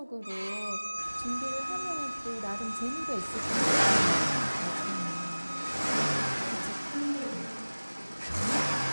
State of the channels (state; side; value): inverted; both; correlation -1.00